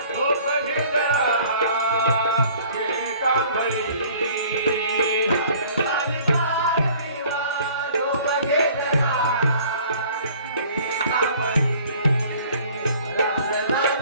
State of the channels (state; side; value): inverted; both; correlation -0.52